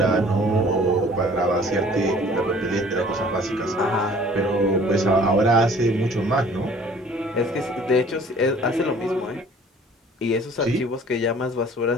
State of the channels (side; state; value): both; normal; correlation 0.52